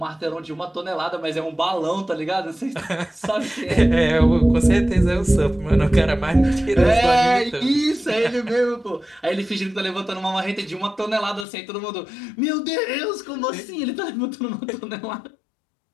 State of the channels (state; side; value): drops out; right; at 11.5 s